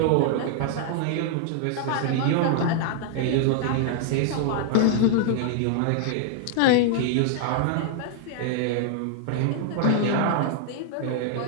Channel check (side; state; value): both; different; correlation -0.01